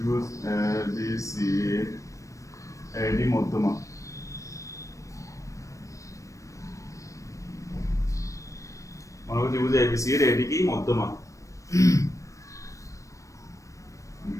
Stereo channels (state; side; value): late; right; 0.15 ms